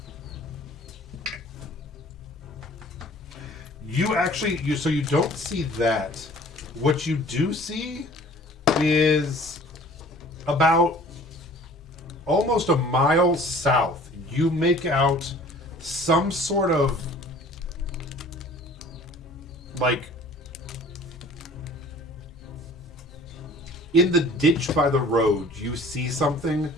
So you don't see that. What you do see is about almost a mile south. You make out some sort of like in the ditch by the road, you see something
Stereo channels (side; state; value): both; normal; correlation 0.49